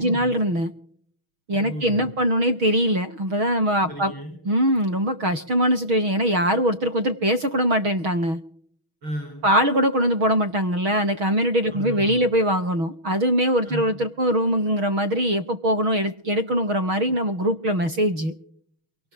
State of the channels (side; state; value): left; late; 6.3 ms